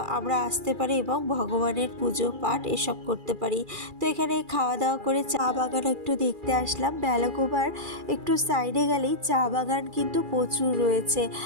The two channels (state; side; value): late; left; 2.4 ms